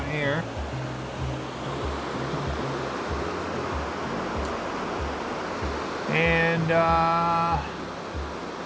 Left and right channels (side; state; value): both; identical; correlation 1.00